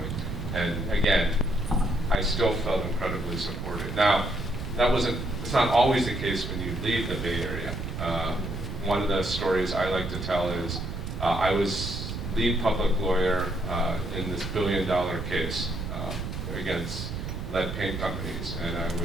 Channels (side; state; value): right; noise; rumble, 5 dB below the sound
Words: And again, I still felt incredibly supported. Now, it's not always the case when you leave the Bay Area. One of the stories I like to tell is I was lead public lawyer in this billion-dollar case against lead paint companies, and I